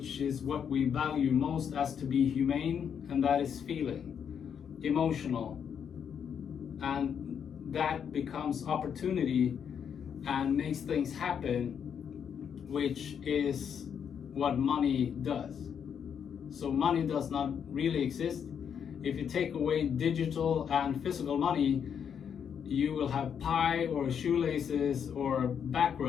is what we value most as to be humane, and that is feeling, emotional. And that becomes opportunity and makes things happen, which is what money does. So money does not really exist. If you take away digital and physical money, you will have pie or shoelaces or back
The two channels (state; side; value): quieter; right; 7.8 dB